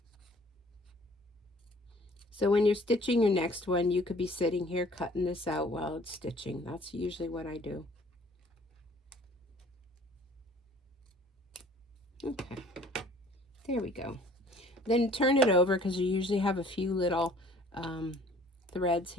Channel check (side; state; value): both; normal; correlation 0.53